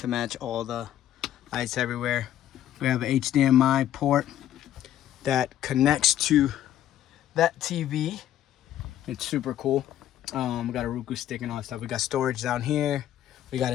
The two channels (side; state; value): right; quieter; 11.8 dB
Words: match all the lights everywhere. We have an HDMI port that connects to that TV. It's super cool. We got a Roku stick and all that stuff. We got storage down here. We got